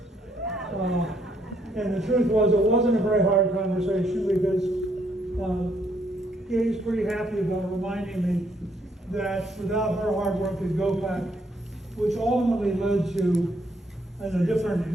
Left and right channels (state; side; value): normal; both; correlation 0.71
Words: And the truth was, it wasn't a very hard conversation because Gay's pretty happy about reminding me that without her hard work at GoPac, which ultimately led to, in a different,